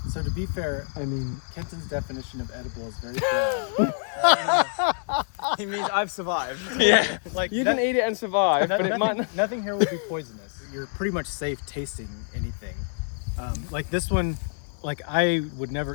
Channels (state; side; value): silent; right; digital silence